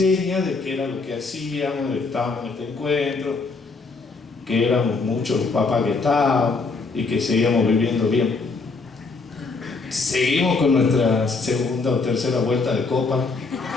de qué era lo que hacíamos, de que estábamos en este encuentro, que éramos muchos los papás que estábamos y que seguíamos viviendo bien. Seguimos con nuestra segunda o tercera vuelta de copa,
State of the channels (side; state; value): right; quieter; 4.1 dB